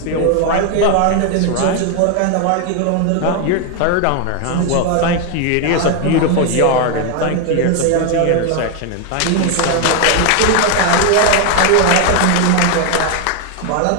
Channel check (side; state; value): both; different; correlation 0.01